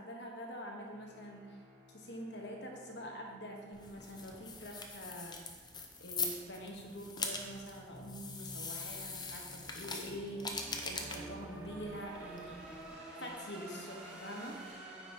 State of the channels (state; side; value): normal; both; correlation 0.18